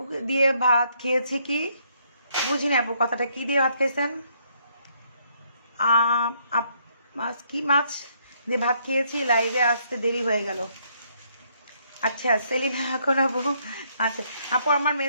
দিয়ে ভাত খেয়েছি কি বুঝি না আপু, কথাটা কি দিয়ে ভাত খেয়েছেন? মাছ কি মাছ দিয়ে ভাত খেয়েছি, লাইভে আসতে দেরি হয়ে গেল। আচ্ছা সেলিনা এখন আপু, আচ্ছা আপু আমার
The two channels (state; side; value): inverted; both; correlation -0.70